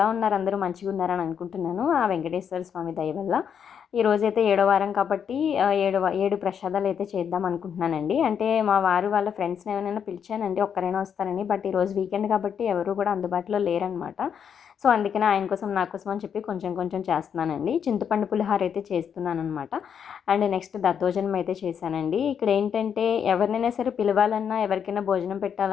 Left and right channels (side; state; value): right; quieter; 7.8 dB